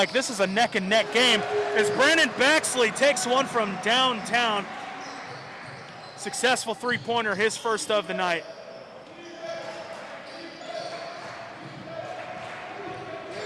this is a neck-and-neck game as Brandon Bexley takes one from downtown. Successful three-pointer, his first of the night.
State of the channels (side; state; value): both; identical; correlation 1.00